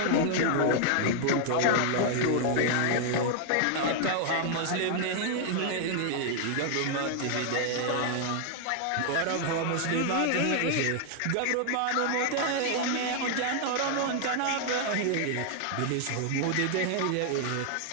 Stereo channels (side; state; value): both; different; correlation 0.00